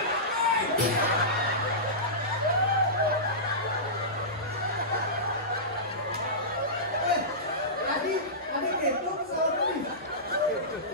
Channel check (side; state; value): both; normal; correlation -0.18